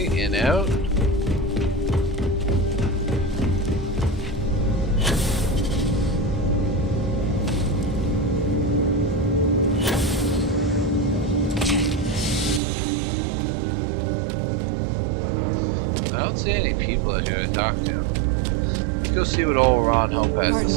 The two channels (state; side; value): drops out; left; at 12.6 s